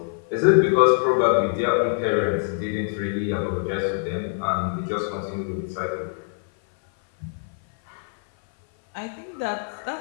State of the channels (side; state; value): right; silent; 57 dB below the other